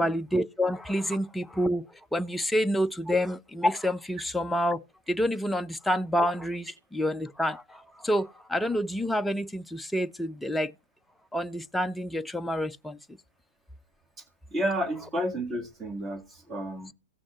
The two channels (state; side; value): normal; both; correlation 0.85